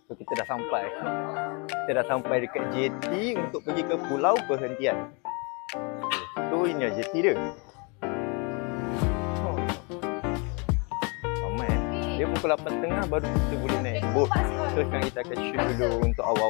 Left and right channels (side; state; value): right; quieter; 32.6 dB